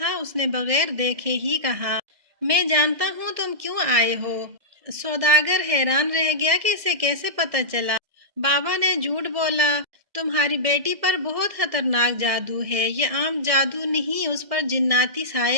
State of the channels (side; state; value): left; late; 1.7 ms